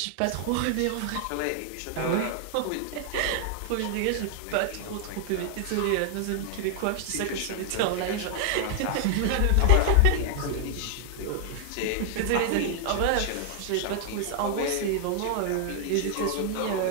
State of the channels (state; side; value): different; both; correlation 0.00